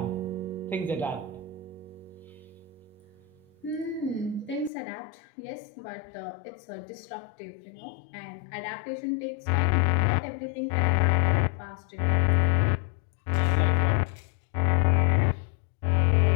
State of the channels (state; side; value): drops out; right; at 4.7 s